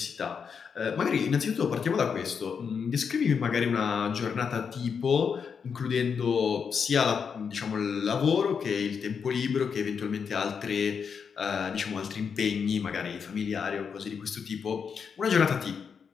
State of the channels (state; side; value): quieter; right; 6.4 dB